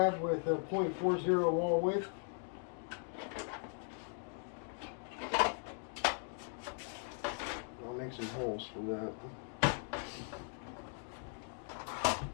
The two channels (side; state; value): right; silent; 52 dB below the other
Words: with a .40 wall width. I'll make some holes for that.